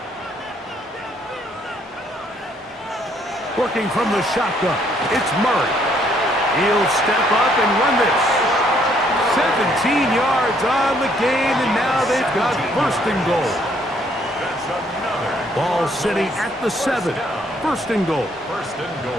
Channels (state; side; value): normal; both; correlation 0.67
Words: Working from the shotgun, it's Murray. He'll step up and run this. 17 yards on the gain, and now they've got 1st and goal. That's another. Ball sitting at the 7. 1st and goal. 1st and